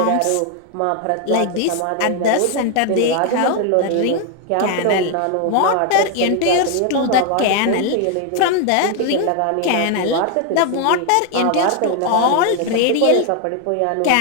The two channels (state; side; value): different; both; correlation 0.01